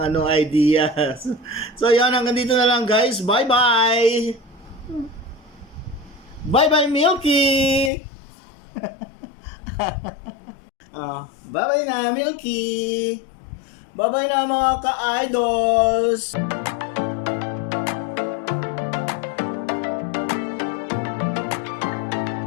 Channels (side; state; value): right; drops out; at 7.9 s